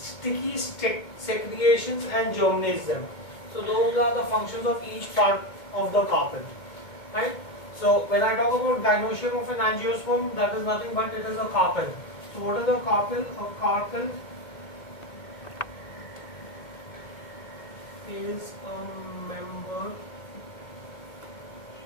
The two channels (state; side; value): late; right; 2.2 ms